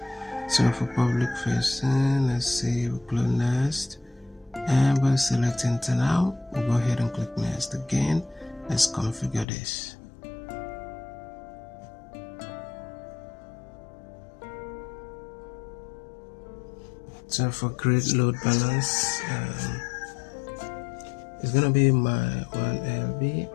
So for public facing, let's see, we'll click next and we'll select internal. We'll go ahead and click next again. Let's configure this. So for create load balance, it's gonna be my 1LB.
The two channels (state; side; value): drops out; right; at 9.5 s